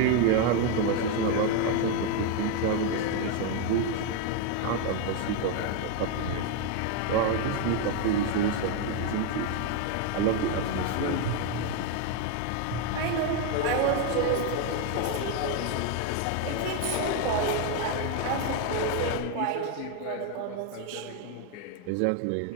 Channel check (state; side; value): different; both; correlation 0.01